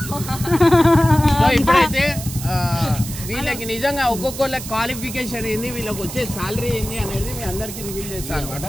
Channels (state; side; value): noise; right; hiss, 10 dB below the sound